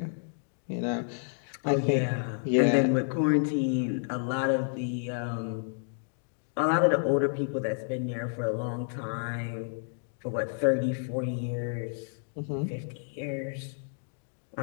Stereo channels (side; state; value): right; silent; digital silence